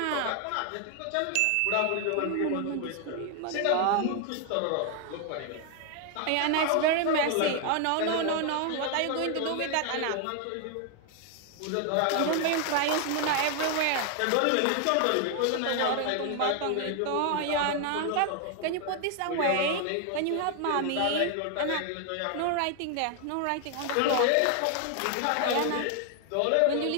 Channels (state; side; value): different; both; correlation 0.00